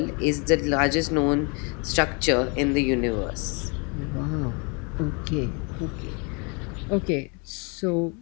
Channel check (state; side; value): quieter; right; 32.9 dB